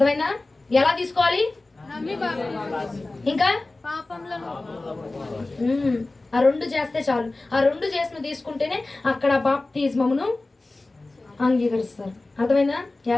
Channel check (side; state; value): right; quieter; 3.1 dB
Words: ఎలా తీసుకోవాలి? ఇంకా ఆ 2 చేస్తే చాలు. ఆ 2 చేసి నువ్వు తీసుకుంటేనే అక్కడ బాప్తిజమును అంగీకరిస్తారు. అర్థమైందా?